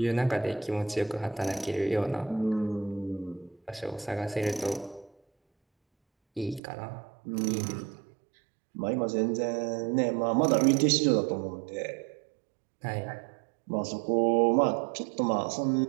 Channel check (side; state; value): left; drops out; at 6.6 s